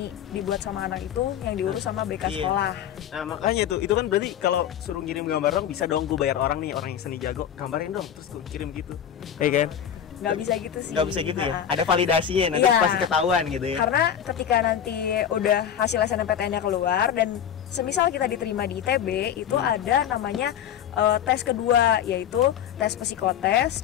dibuat sama anak itu yang diurus sama BK sekolah. Nah, makanya itu kan berarti kalau suruh ngirim gambar dong, bisa dong gue bayar orang nih, orang yang seni jago, gambarin dong, terus gue kirim gitu. Kayak kan? Nggak bisa gitu sih. Nggak bisa gitu ya? Ada validasinya, nanti pasti ketahuan gitu ya? Karena ketika nanti udah hasil SNMPTN-nya keluar dan semisal kita diterima di ITB, itu ada namanya tes kedua, yaitu tes psikotes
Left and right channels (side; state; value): right; quieter; 9.3 dB